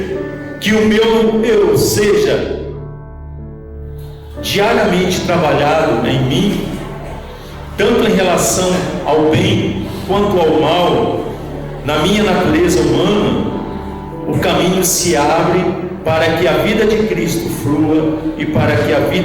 que o meu eu seja diariamente trabalhado em mim, tanto em relação ao bem quanto ao mal, na minha natureza humana, o caminho se abre para que a vida de Cristo flua e para que a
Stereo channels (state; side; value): identical; both; correlation 1.00